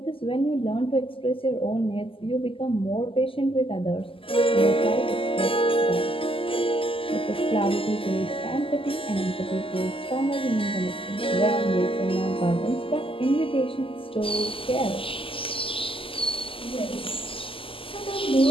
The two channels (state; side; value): late; right; 0.26 ms